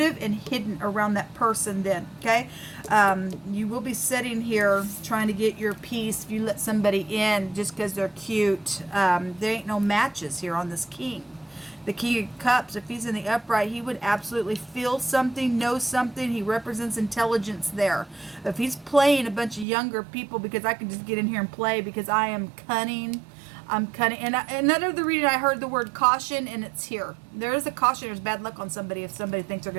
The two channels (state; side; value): drops out; left; at 19.7 s